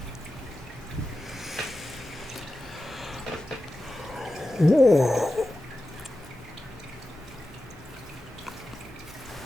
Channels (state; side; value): normal; both; correlation 0.93